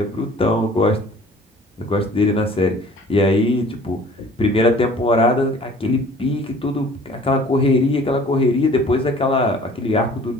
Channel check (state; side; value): normal; both; correlation 0.50